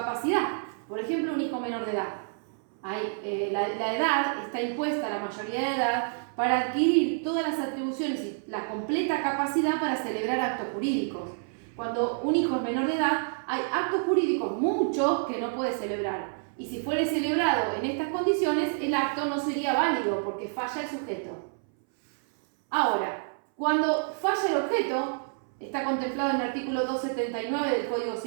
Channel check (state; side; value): silent; left; 59 dB below the other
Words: Por ejemplo, un hijo menor de edad. La edad está impuesta, la mayoría de edad, para adquirir todas las atribuciones y la completa capacidad para celebrar actos jurídicos. Cuando un hijo es menor de edad, hay actos jurídicos muchos que no puede celebrar. Y si fuere celebrado en estas condiciones, el acto no sería válido porque falla el sujeto. Ahora, Cuando falla el objeto, está contemplado en el artículo 279 del Código